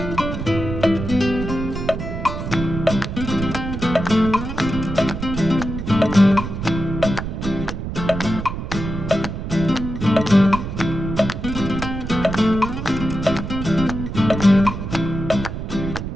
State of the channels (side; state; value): right; noise; rumble, 6 dB below the sound